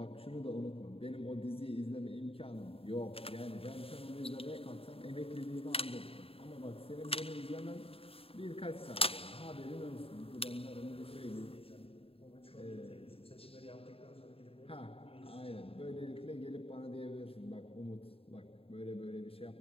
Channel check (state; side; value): late; right; 0.27 ms